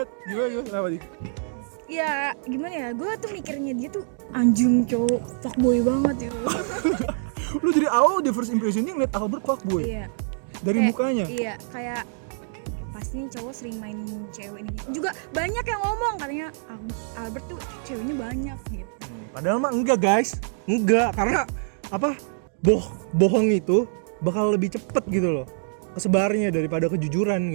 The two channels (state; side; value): silent; left; digital silence